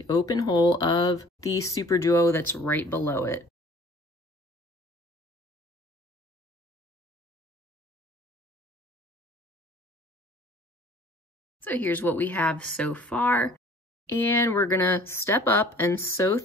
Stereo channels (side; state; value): both; normal; correlation 0.51